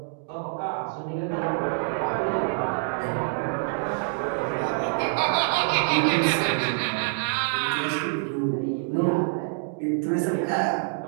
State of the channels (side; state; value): left; silent; digital silence